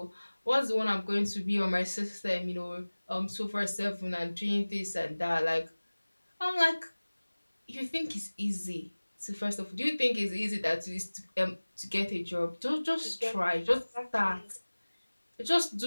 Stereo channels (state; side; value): inverted; both; correlation -1.00